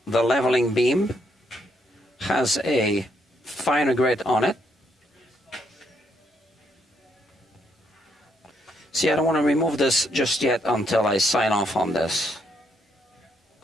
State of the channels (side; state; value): both; normal; correlation 0.74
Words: the leveling beam has a finer grid on it. See, I don't want to remove this just yet until I sign off on this.